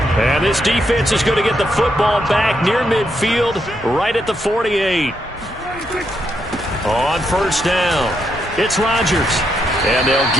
And this defense is going to get the football back near midfield, right at the 48. On first down, it's Rodgers. And they'll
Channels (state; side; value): normal; both; correlation 0.79